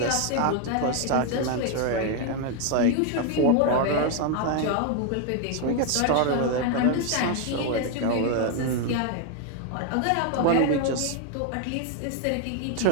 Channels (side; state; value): both; different; correlation 0.01